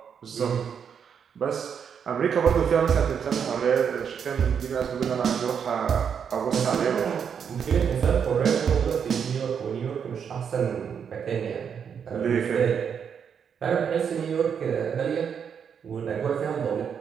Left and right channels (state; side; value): quieter; left; 7.3 dB